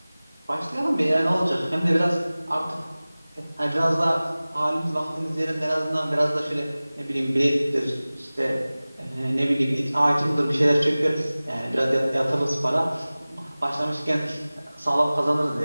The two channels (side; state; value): both; inverted; correlation -0.99